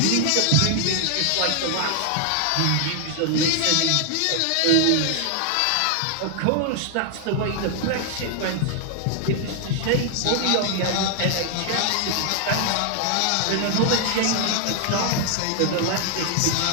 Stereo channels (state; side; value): different; both; correlation 0.00